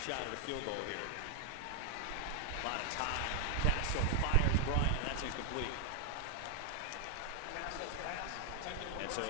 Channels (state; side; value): different; both; correlation 0.00